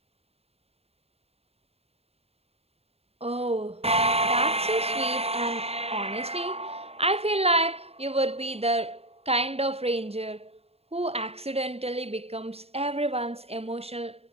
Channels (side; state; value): left; late; 0.29 ms